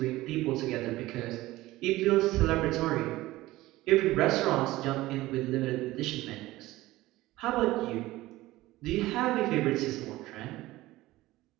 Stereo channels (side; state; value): left; quieter; 17.7 dB